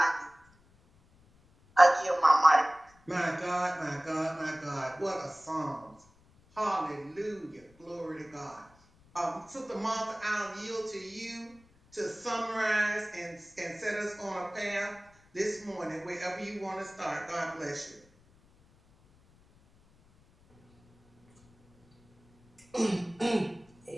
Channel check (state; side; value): noise; left; rumble, 30 dB below the sound